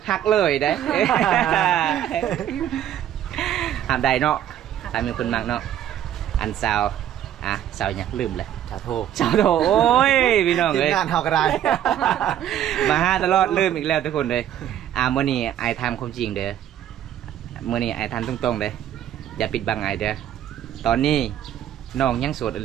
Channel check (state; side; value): quieter; left; 11.0 dB